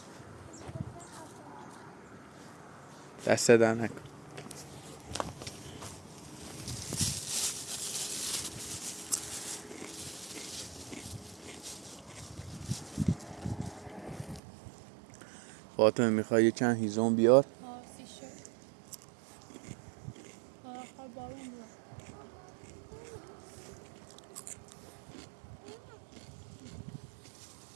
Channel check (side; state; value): left; drops out; at 14.4 s